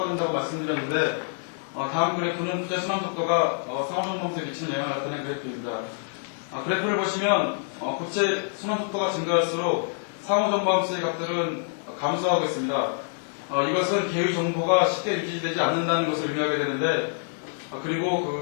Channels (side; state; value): right; silent; digital silence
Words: 된다고 말씀드렸는데, 다음 그래프는 부재 순환 속도가 상호정방수에 미치는 영향을 나타낸 그래프입니다. 그래프를 보시면 고체 순환 속도가 증가할수록 상호정방수의 값들은 감소하고 있습니다. 이것은 계의 정보가 쉽게 유지되지 않는다는 것을 의미하게 되는데, 그리고